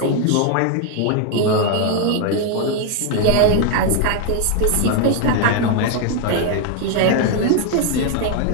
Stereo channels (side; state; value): both; different; correlation 0.01